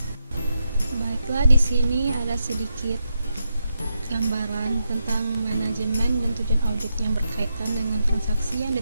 Baiklah, di sini ada sedikit gambaran tentang manajemen dan tujuan audit yang berkaitan dengan transaksi yang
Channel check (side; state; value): both; inverted; correlation -0.84